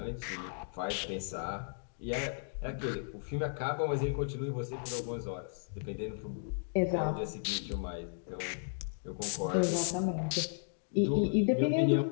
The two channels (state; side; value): silent; right; digital silence